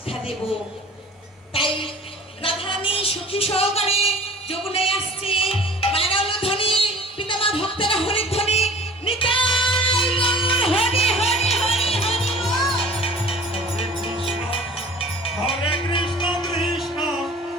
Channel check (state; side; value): normal; both; correlation 0.46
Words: দেব। তাই রাধারানী সুখী সহকারে যমুনায় আসছে। মানব ধ্বনি পিতামা ভক্তেরা হরি ধ্বনি নিতাই গৌর হরি হরি হরি হরি বল। হরে Krishna Krishna